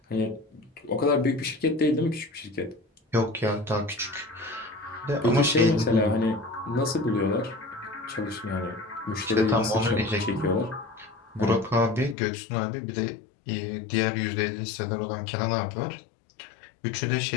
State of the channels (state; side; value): drops out; right; at 12.2 s